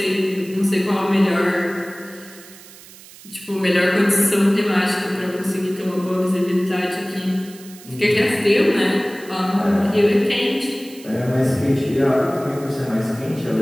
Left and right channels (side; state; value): right; noise; hiss, 20 dB below the sound